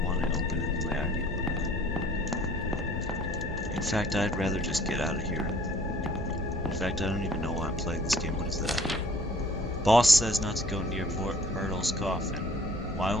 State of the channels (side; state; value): both; normal; correlation 0.55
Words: want to open it the way I'd open it. In fact, I'd rather just get out of here. In fact, I don't even know why I'm playing this game. What is that? Boss says not to go near Myrtle's coffin. Why